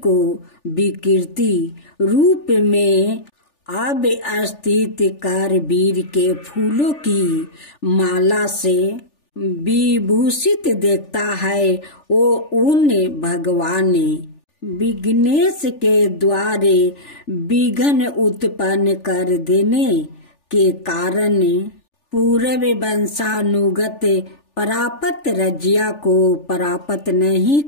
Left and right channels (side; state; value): right; late; 3.4 ms